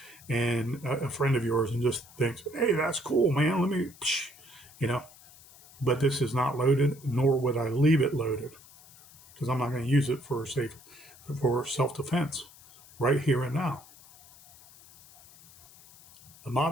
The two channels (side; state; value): left; noise; hiss, 23 dB below the sound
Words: and a friend of yours, and just thinks, hey, that's cool, man. Let me, you know. But this is not loaded, nor would I leave it loaded, because I'm not going to use it for self-defense right here and now. The